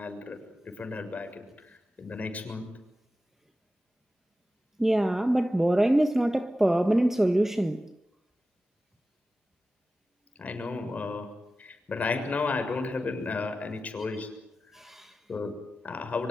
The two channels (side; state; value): both; normal; correlation 0.94